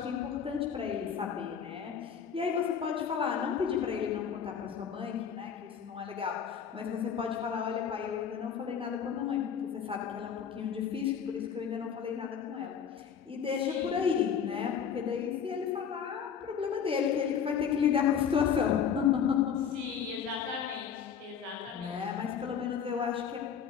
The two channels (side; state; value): right; quieter; 7.6 dB